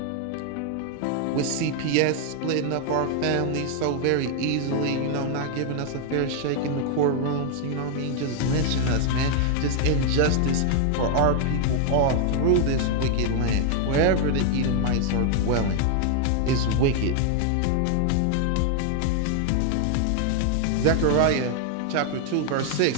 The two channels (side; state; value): both; different; correlation 0.00